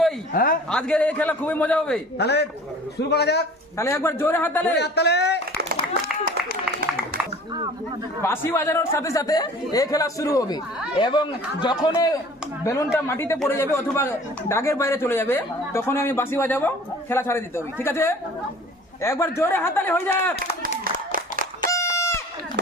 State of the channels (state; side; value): normal; both; correlation 0.47